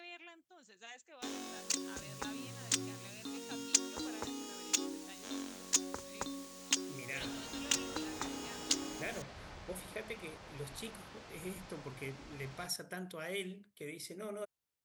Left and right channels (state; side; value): identical; both; correlation 1.00